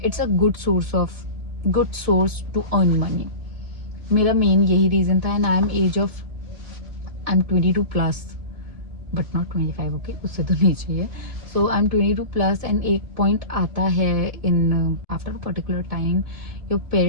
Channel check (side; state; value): left; late; 2.5 ms